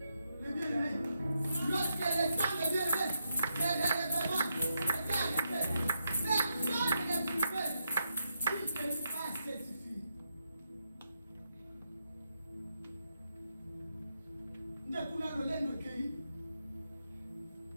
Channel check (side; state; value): both; inverted; correlation -0.82